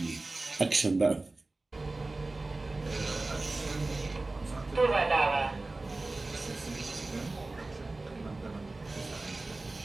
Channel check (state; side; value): quieter; left; 3.2 dB